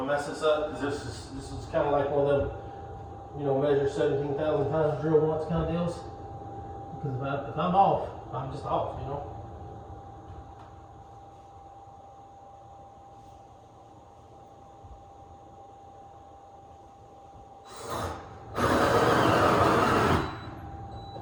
mess this up, because this is kind of like one of them, measure 17,000 times drill once kind of deals. Because if I'm off, I'm just off,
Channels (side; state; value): both; identical; correlation 1.00